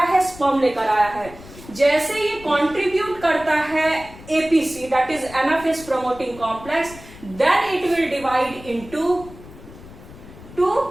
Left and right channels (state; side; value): noise; left; rumble, 18 dB below the sound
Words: है, स्पर्म लेकर आया है। जैसे ये कंट्रीब्यूट करता है APC, that is anaphase promoting complex, then it will divide into two,